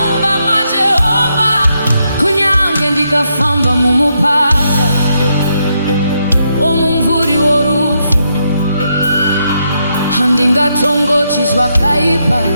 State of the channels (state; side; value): inverted; both; correlation -0.80